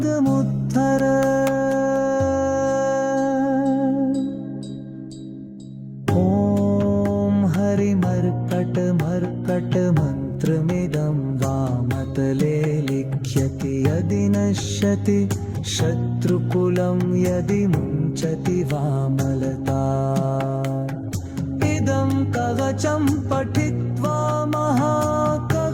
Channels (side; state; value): both; identical; correlation 1.00